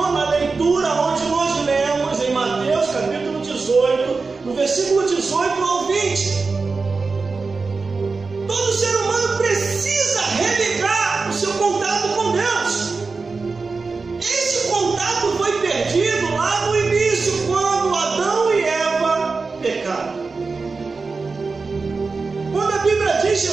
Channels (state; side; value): quieter; left; 4.3 dB